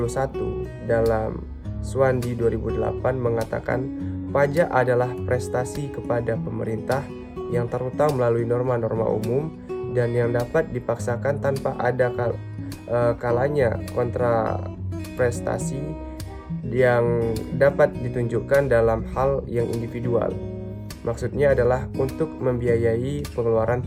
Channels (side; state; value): both; identical; correlation 1.00